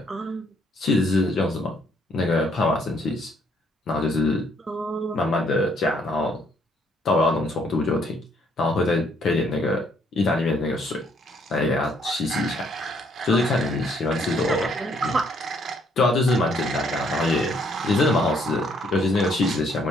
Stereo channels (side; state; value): both; normal; correlation 0.67